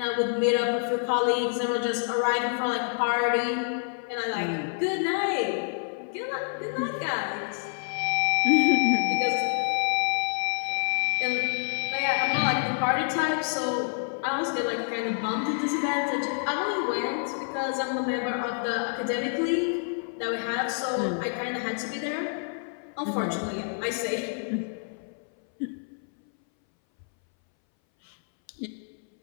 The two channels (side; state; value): right; silent; 60 dB below the other